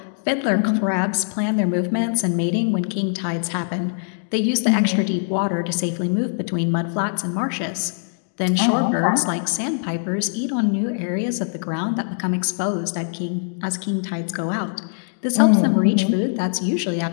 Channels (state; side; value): silent; right; digital silence